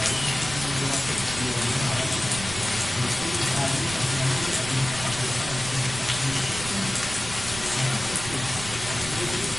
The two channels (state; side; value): noise; right; rumble, 11 dB below the sound